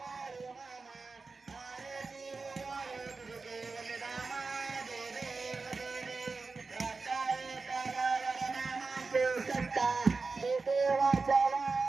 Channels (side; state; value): left; quieter; 4.2 dB